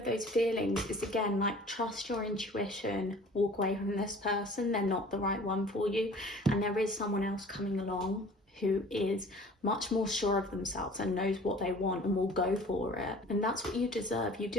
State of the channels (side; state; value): both; normal; correlation 0.47